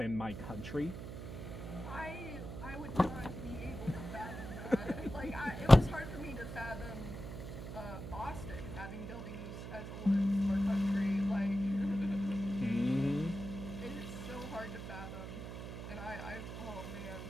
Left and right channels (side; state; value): right; noise; hum, 8 dB below the sound